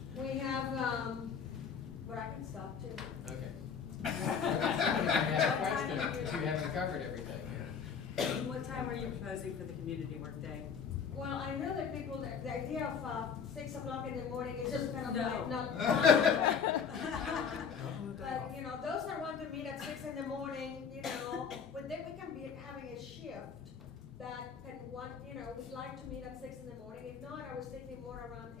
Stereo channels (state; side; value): quieter; right; 6.6 dB